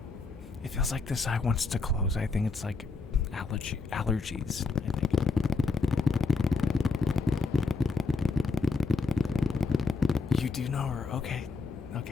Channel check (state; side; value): quieter; right; 4.2 dB